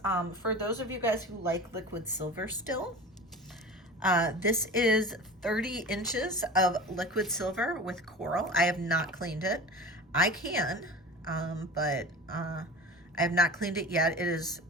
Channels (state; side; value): normal; both; correlation 0.35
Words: for those of you guys who like liquid silver still, this is 30 inches of liquid silver with coral. I have not cleaned it. I can, but I have not cleaned it yet. It is